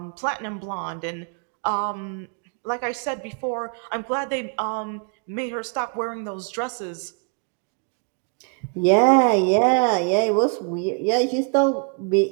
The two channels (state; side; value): quieter; left; 37.3 dB